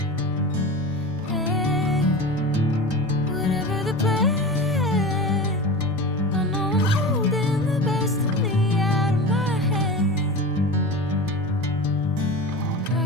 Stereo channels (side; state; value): both; normal; correlation 0.30